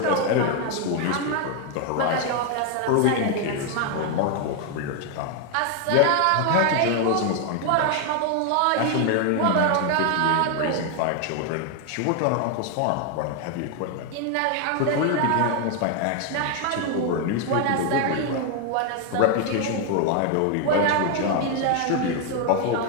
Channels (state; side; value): different; both; correlation 0.01